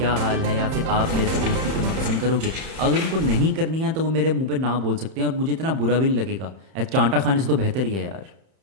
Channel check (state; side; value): late; left; 31 ms